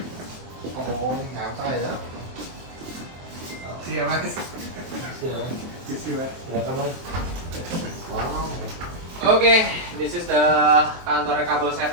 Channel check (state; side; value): late; left; 23 ms